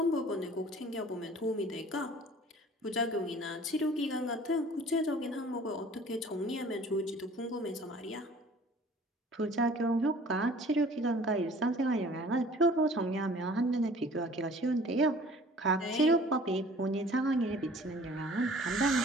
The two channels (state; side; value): normal; both; correlation 0.50